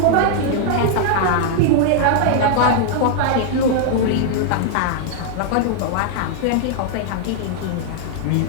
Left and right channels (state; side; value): different; both; correlation 0.00